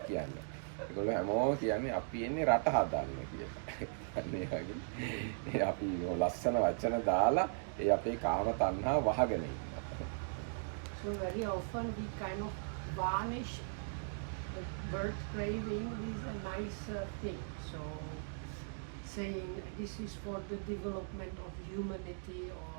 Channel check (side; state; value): left; silent; digital silence